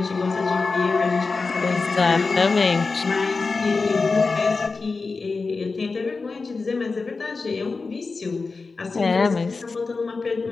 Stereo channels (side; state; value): right; quieter; 4.2 dB